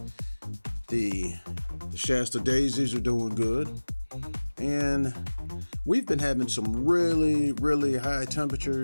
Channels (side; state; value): both; inverted; correlation -1.00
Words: The Shasta daisies are doing good. And we've been having some really, really high